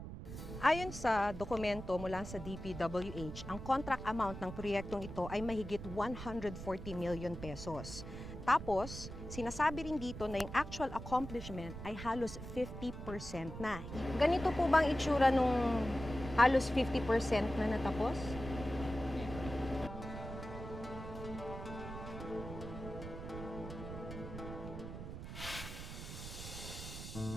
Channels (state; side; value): noise; right; rumble, 9 dB below the sound